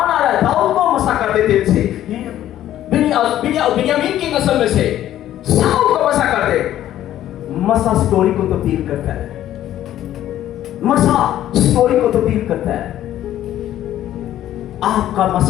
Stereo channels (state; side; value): quieter; right; 12.5 dB